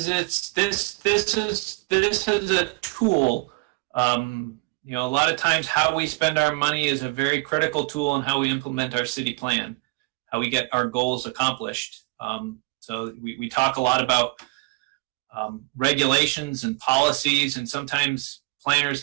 this is a tool. You know, a lot of times how we spend our money is a very critical tool in how we implement our city plan, how we get our goals accomplished. So we talk a lot about regulations and policies, and sometimes planners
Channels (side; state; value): left; quieter; 26.7 dB